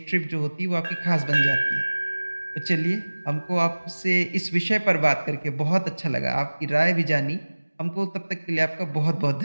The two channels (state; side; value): inverted; both; correlation -1.00